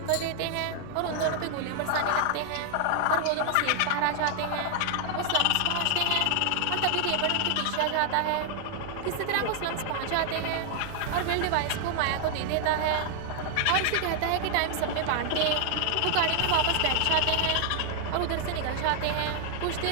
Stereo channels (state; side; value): different; both; correlation 0.00